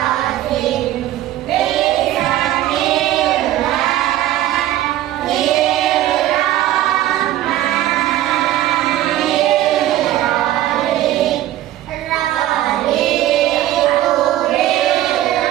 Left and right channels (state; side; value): quieter; left; 13.7 dB